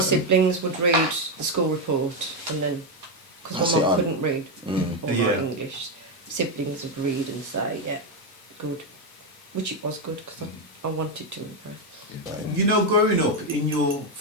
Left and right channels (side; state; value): both; normal; correlation 0.06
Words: would read the school report, and then, because my mum couldn't read or write English, siblings would read and say, yeah, good. Which it was good, because I wanted to impress. You know, growing up in your